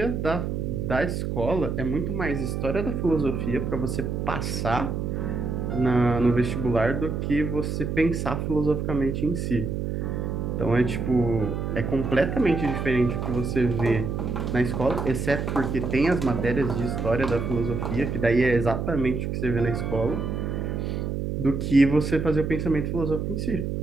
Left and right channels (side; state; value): right; noise; hum, 2 dB below the sound